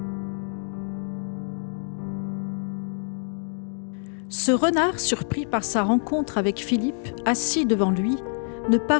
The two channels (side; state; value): right; silent; digital silence